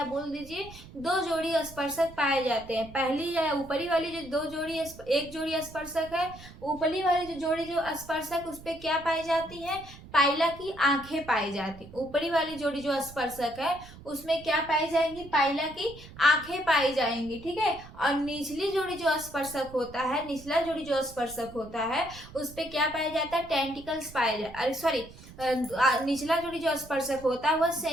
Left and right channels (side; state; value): right; noise; rumble, 18 dB below the sound